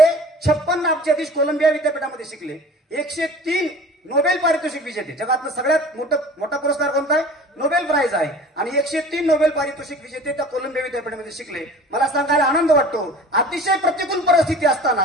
56 अब्जाधीश कोलंबिया विद्यापीठामध्ये शिकले. 103 नोबेल पारितोषिक विजेते, जगातलं सगळ्यात मोठा पुरस्कार कोणता आहे, नोबेल प्राइज आहे, आणि 103 नोबेल पारितोषिक विजेते त्या कोलंबिया विद्यापीठामध्ये शिकले. मला सांगायला आनंद वाटतो, अतिशय प्रतिकूल परिस्थिती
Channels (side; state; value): both; normal; correlation 0.43